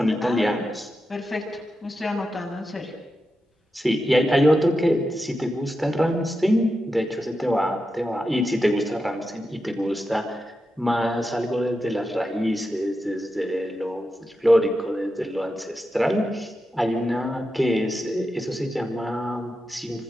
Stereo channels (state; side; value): normal; both; correlation 0.89